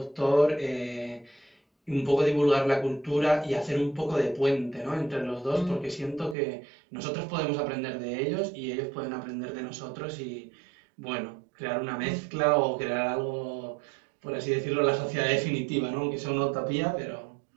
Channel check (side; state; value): left; drops out; at 6.4 s